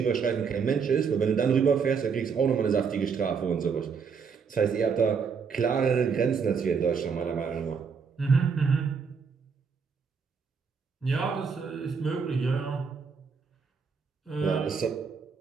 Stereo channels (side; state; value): left; quieter; 5.9 dB